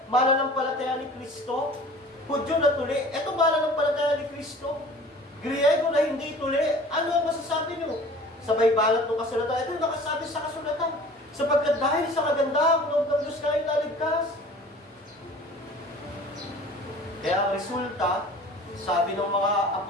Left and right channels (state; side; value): normal; both; correlation 0.45